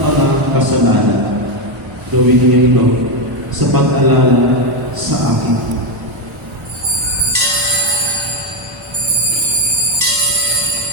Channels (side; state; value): both; normal; correlation 0.07